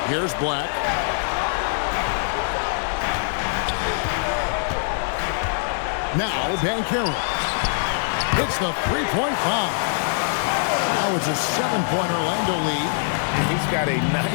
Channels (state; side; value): silent; right; 58 dB below the other